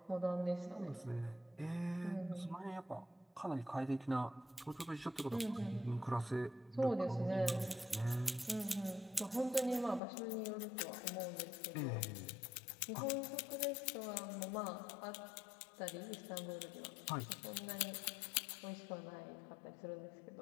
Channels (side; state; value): right; drops out; at 10.0 s